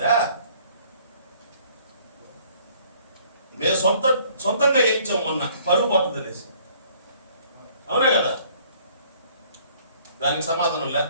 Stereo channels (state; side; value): inverted; both; correlation -0.59